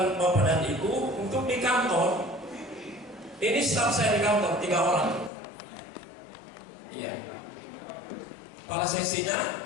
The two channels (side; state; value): right; drops out; at 5.3 s